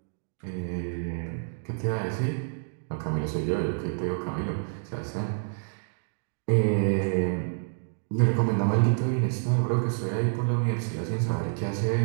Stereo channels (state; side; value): silent; left; digital silence